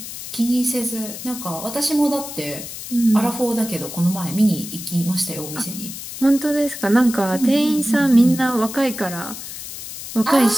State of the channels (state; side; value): noise; left; hiss, 10 dB below the sound